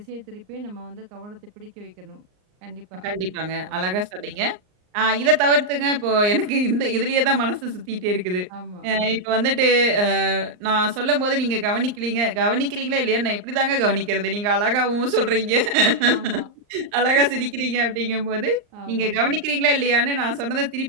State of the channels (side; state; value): left; late; 39 ms